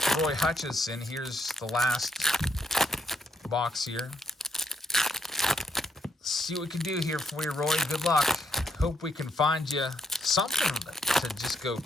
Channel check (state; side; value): normal; both; correlation 0.75